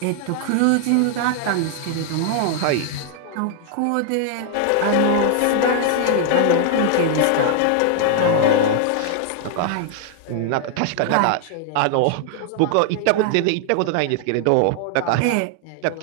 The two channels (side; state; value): both; different; correlation 0.00